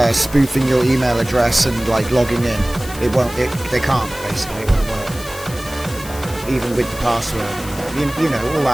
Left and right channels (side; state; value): left; noise; hiss, 15 dB below the sound